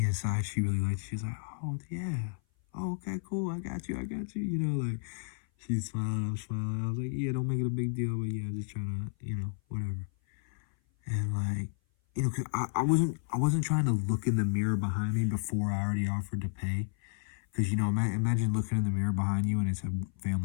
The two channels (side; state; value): right; silent; 56 dB below the other